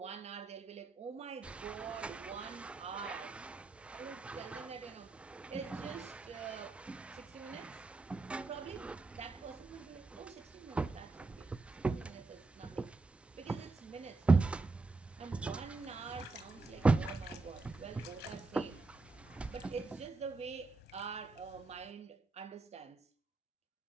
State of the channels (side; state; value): left; quieter; 3.6 dB